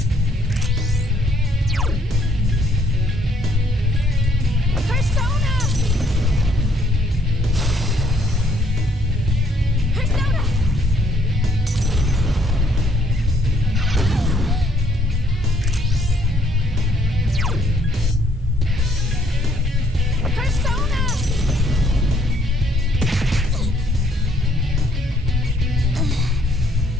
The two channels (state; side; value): normal; both; correlation 0.67